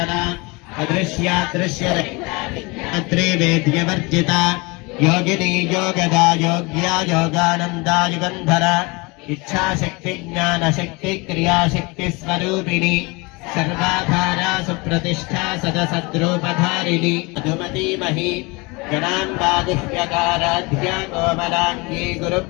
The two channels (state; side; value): quieter; right; 26.4 dB